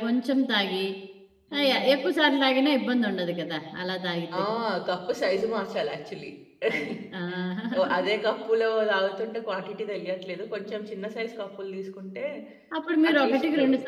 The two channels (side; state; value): both; identical; correlation 1.00